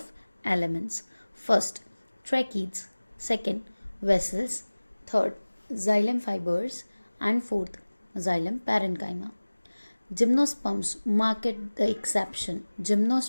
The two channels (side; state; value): both; inverted; correlation -1.00